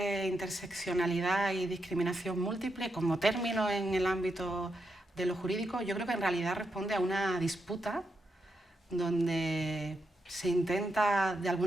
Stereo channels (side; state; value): both; normal; correlation 0.84